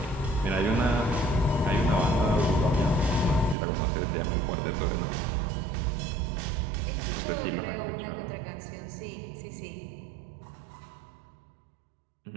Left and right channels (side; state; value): left; drops out; at 3.6 s